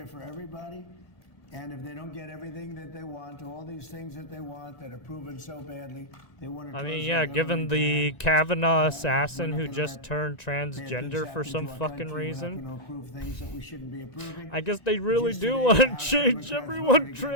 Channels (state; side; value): late; right; 1.9 ms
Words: for everybody. And if they don't get everything that they want, all these things that they want that are proven so badly, they want to. I mean, yeah, given the Kavanaugh assassin who just turned transgender for some fucking reason, I guess they really do want to change everyone